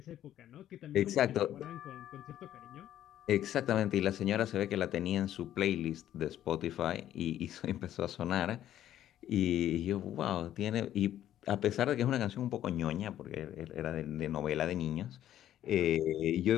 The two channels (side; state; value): right; quieter; 11.9 dB